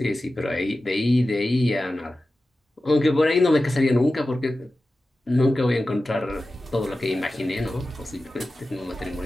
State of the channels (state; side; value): normal; both; correlation 0.94